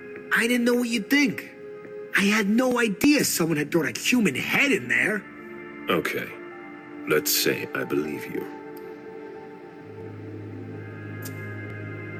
I didn't know what you'd think. I had no idea someone had thrown a human head in there. Okay. Let's say I believe you.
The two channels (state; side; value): identical; both; correlation 1.00